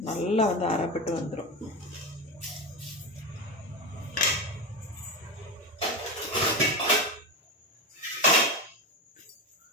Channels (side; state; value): both; normal; correlation 0.18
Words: நல்லா வந்து அரைப்பட்டு வந்துடும்.